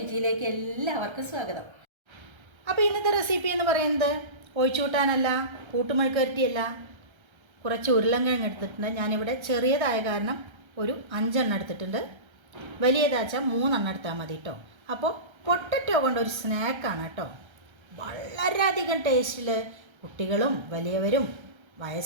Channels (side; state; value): left; late; 1.3 ms